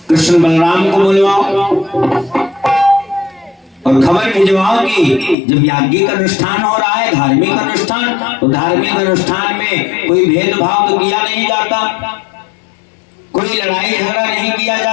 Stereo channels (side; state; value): right; drops out; at 5.4 s